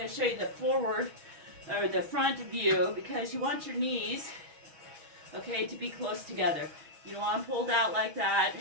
to show you the forward or the front view because you want your knees, okay, to be close together. You don't want them pulled out like that.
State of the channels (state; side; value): late; left; 6.2 ms